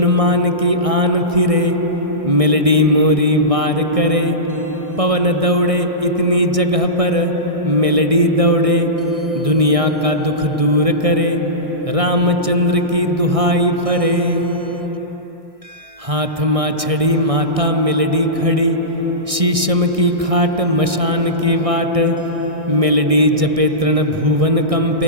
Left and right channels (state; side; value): late; left; 1.6 ms